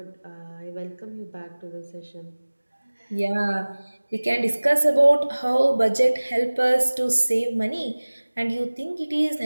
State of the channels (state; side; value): inverted; both; correlation -1.00